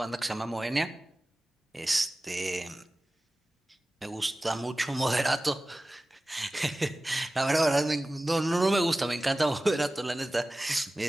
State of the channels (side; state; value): both; normal; correlation 0.97